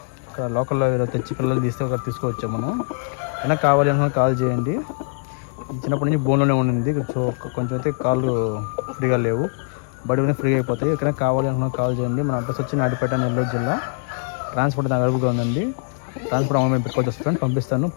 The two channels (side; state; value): right; silent; digital silence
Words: ఇక్కడ లోకల్లో తెచ్చి పిల్లలు తీసుకోవచ్చు మనం. అయినా కావాలి అనుకున్న కాల్ చేయండి. చిన్నప్పటి నుంచి బోన్లోనే ఉండింది. సో కొంచెం అయితే కాళ్ళు ఫ్రీగా లేవు, బడి మీద ఫ్రీగా అయిపోతాయి. ఎక్కడైనా కావాలి అనుకున్న కాల్ చేయండి. మన అడ్రస్ వచ్చి నాయుడుపేట, నెల్లూరు జిల్లా. ట్రాన్స్పోర్ట్ అవైలబుల్గా ఉందండి. ట్రాన్స్పోర్ట్ అమౌంట్ పెట్టుకోవచ్చు ఫ్రెండ్, పంపిస్తాను